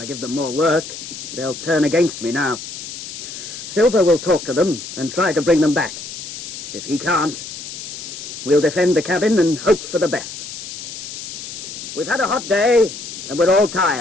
give them more work, they'll turn against me now. Silver will talk to them and try to bring them back. If he can't, we'll defend the cabin and hope for the best. We've had a hot day, and we're all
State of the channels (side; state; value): left; noise; hiss, 10 dB below the sound